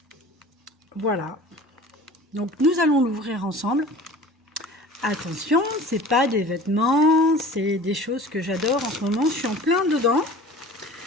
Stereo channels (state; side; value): normal; both; correlation 0.42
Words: voilà. Donc nous allons l'ouvrir ensemble. Attention, c'est pas des vêtements, c'est des choses que j'adore en ce moment. Je suis en plein dedans.